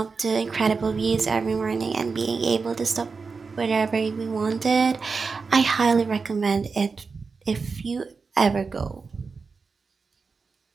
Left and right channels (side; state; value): left; quieter; 4.7 dB